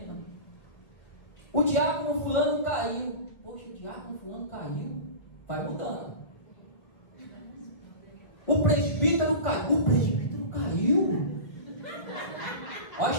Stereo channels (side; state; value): right; late; 1.5 ms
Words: O diácono fulano caiu. Poxa, o diácono fulano caiu. Vai mudando. O presbítero caiu. O presbítero caiu. Olha a